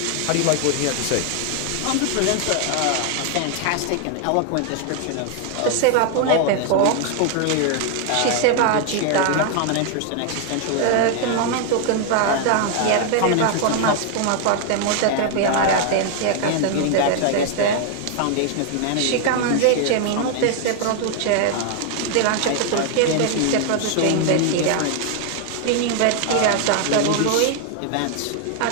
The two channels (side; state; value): both; different; correlation 0.00